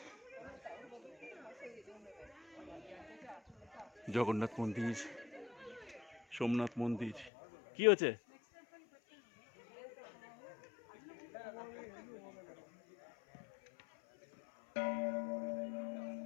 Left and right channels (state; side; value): drops out; right; at 7.3 s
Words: জগন্নাথ মন্দির, সোমনাথ মন্দির। কি হচ্ছে?